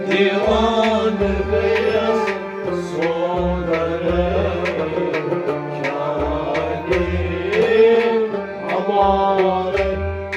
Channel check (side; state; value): both; identical; correlation 1.00